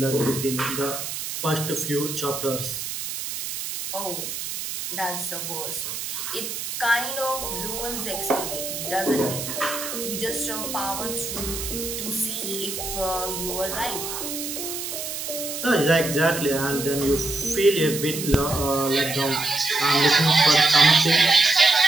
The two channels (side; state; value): right; noise; hiss, 6 dB below the sound